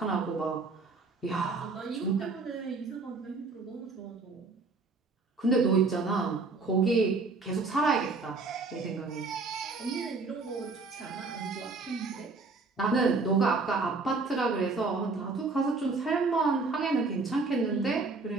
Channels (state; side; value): quieter; left; 3.9 dB